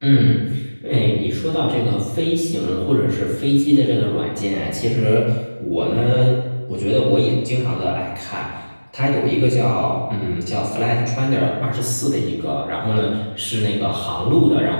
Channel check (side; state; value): both; inverted; correlation -1.00